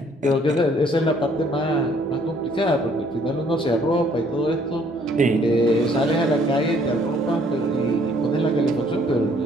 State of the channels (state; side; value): normal; both; correlation 0.62